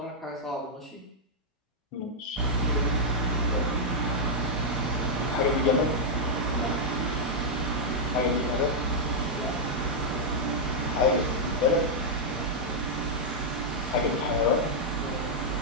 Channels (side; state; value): both; normal; correlation -0.04